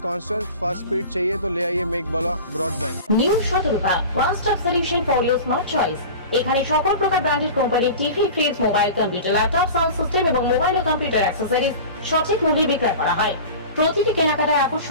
कांस्टेंट फास्ट स्पीड चाहिए तो ले आइए Meghbala broadband. New Shatarupa one stop solution for your smart choice. এখানে সকল প্রকার ব্র্যান্ডেড কোম্পানির TV, fridge, mobile, computer, laptop, sound system এবং মোবাইল ও কম্পিউটার অ্যাক্সেসরিজ সঠিক মূল্যে বিক্রয় করা হয়। প্রতিটি কেনাকাটায়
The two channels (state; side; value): inverted; both; correlation -0.35